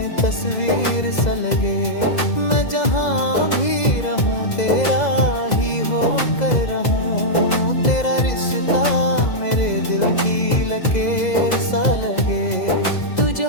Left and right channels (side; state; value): right; late; 2.0 ms